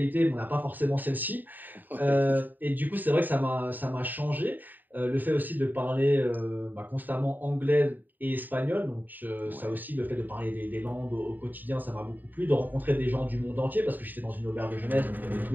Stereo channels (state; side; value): late; left; 0.089 ms